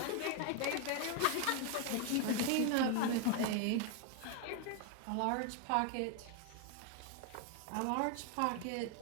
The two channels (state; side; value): different; both; correlation 0.01